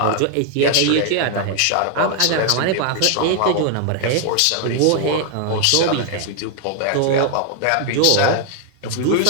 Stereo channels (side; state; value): both; different; correlation 0.00